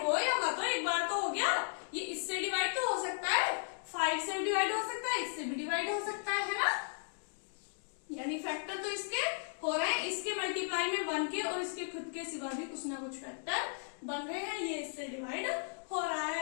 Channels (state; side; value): silent; right; digital silence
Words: हो या मत हो, एक बार तो हो गया। ये इससे डिवाइड तो हो सकता है, 5 से डिवाइड हो सकता है, इससे भी डिवाइड हो सकता है ना। यानी फैक्टर तो इसके हो रहे हैं, इसके मल्टीप्लाई में 1 के और इसके खुद के सिवा भी कुछ ना कुछ फैक्टर बन रहे हैं, ये इससे डिवाइड हो रहा